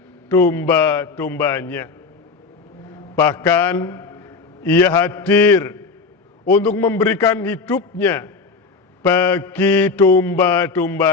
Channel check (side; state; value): right; quieter; 4.5 dB